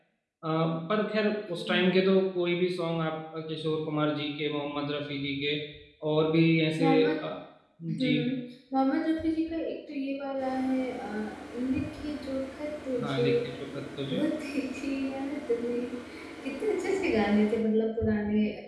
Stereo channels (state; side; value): identical; both; correlation 1.00